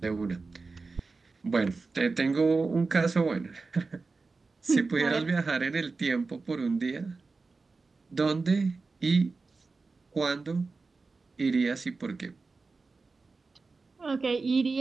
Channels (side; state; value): left; quieter; 4.0 dB